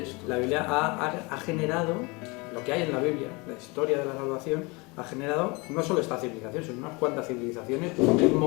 La Biblia ha generado, lo que hay en la Biblia, la historia de la salvación, ha generado no solo esta civilización, sino unas cuantas civilizaciones, un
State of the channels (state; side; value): quieter; right; 27.1 dB